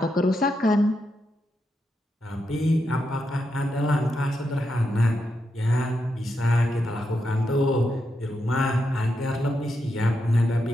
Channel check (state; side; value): normal; both; correlation 0.84